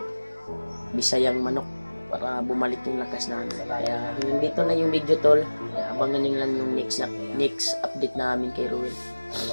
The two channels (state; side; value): inverted; both; correlation -1.00